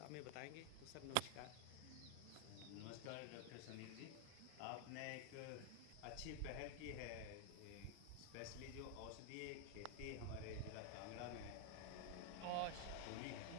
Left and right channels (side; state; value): both; different; correlation 0.00